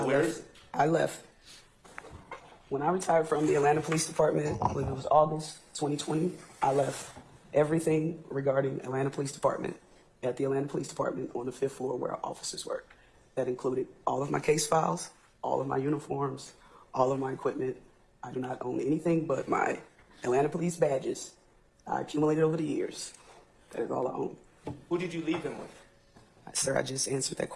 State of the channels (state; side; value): identical; both; correlation 1.00